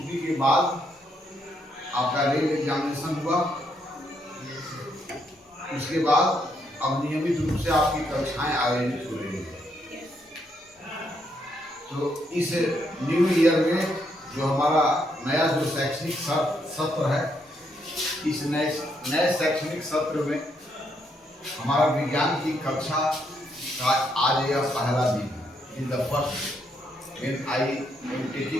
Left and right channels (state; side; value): normal; both; correlation 0.76